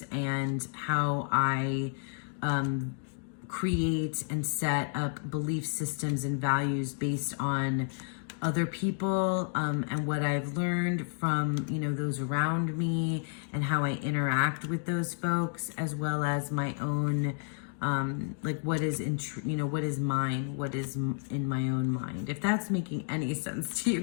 and how I create and set up belief systems and values based on other people, and what I've learned from, you know, those around me and how I interact with those folks, as well as my own like what is what is mine, what is in my own mind, if that's making any sense to you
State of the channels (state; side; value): silent; right; 57 dB below the other